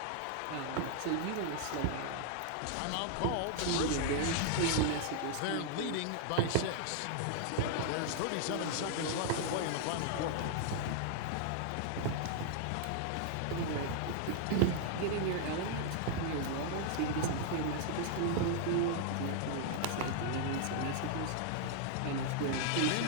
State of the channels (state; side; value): different; both; correlation -0.01